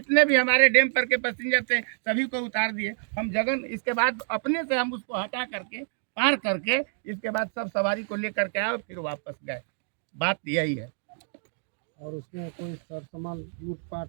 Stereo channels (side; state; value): left; silent; digital silence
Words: भी हमारे डैम पर के पैसेंजर थे सभी को उतार दिए हम जगन। इसके बाद अपने से हम उसको हटा करके पार करके इसके बाद सब सवारी को लेकर के आए, फिर वापस गए। बात यही है। और उसमें कोई सामान